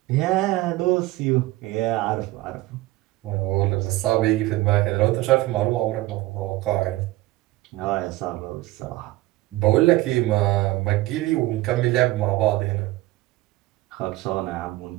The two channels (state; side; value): quieter; left; 18.3 dB